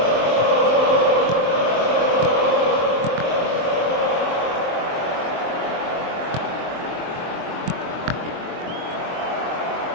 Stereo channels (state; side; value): late; left; 23 ms